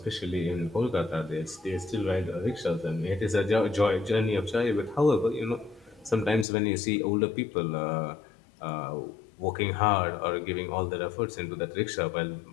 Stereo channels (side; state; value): right; drops out; at 6.5 s